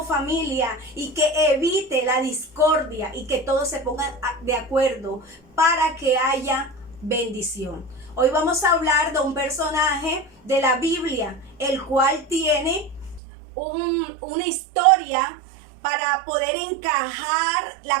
familia y que evite la discordia y que todos se pongan de acuerdo para que haya bendición. Hoy vamos a hablar de un personaje de la Biblia, el cual tiene una historia. Para poder encajar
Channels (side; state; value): left; drops out; at 13.2 s